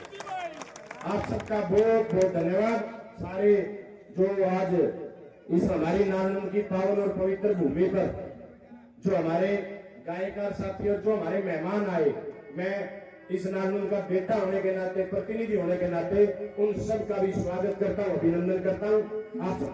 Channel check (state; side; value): identical; both; correlation 1.00